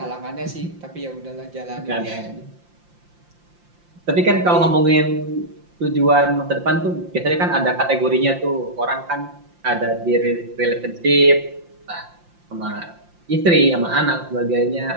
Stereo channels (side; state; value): left; late; 5.7 ms